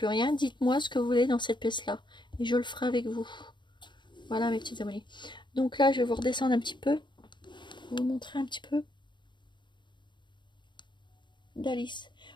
rien. Dites-moi ce que vous voulez dans cette pièce-là. Et je le ferai avec vous. Voilà mes petits abonnés. Donc là, je vais vous redescendre un petit peu. Vous montrer un petit peu d'Alice.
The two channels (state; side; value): late; right; 0.22 ms